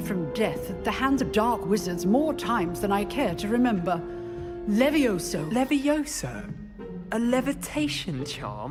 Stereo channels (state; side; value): identical; both; correlation 1.00